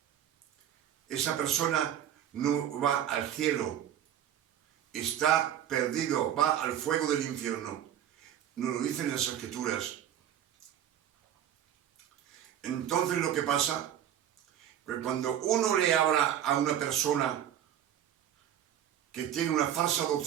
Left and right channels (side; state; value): left; quieter; 10.4 dB